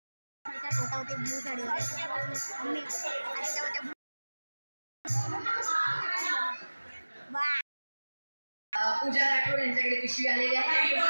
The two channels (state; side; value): inverted; both; correlation -1.00